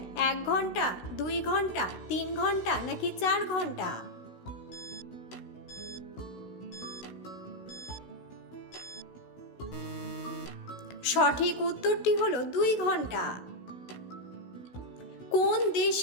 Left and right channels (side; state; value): right; late; 16 ms